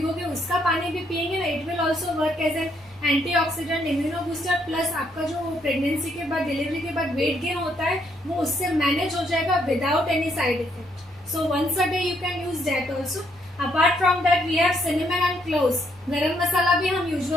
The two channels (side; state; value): both; normal; correlation 0.72